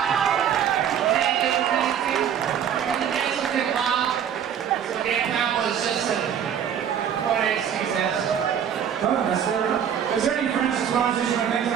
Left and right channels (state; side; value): quieter; left; 8.7 dB